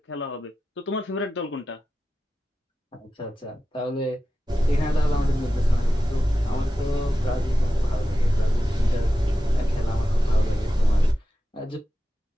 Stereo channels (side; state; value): both; normal; correlation 0.93